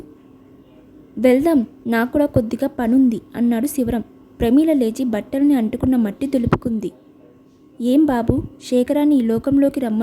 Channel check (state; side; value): identical; both; correlation 1.00